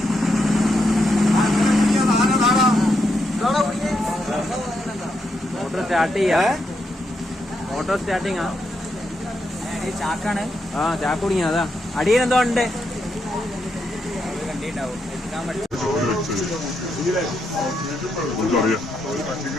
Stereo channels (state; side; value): normal; both; correlation 0.81